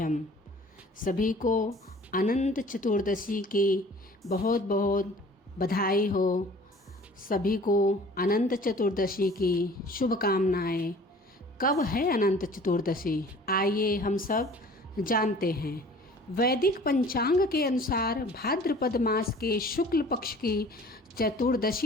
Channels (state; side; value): normal; both; correlation 0.48